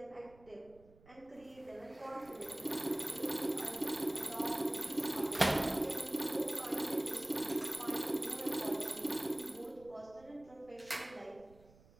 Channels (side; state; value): right; noise; rumble, 25 dB below the sound